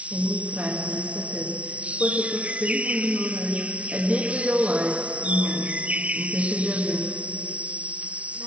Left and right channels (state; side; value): late; left; 0.063 ms